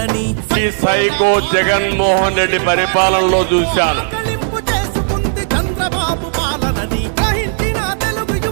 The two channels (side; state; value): left; silent; digital silence